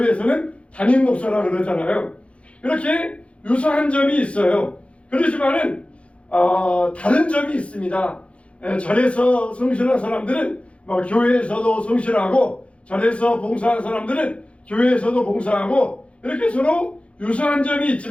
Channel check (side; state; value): right; late; 0.061 ms